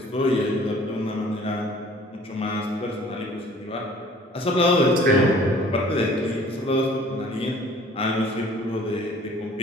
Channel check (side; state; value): both; normal; correlation 0.52